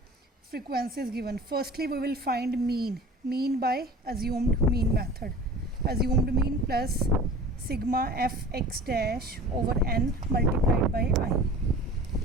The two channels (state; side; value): normal; both; correlation 0.41